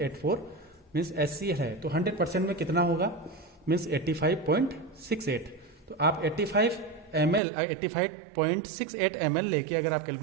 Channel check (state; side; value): drops out; left; at 7.4 s